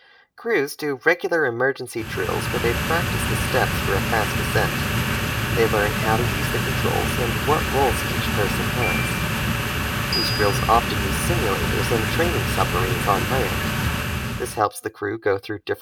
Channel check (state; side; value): identical; both; correlation 1.00